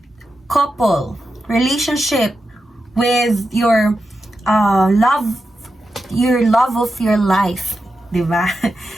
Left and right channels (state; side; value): normal; both; correlation 0.89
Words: couple, relationship with your love of your life. di ba?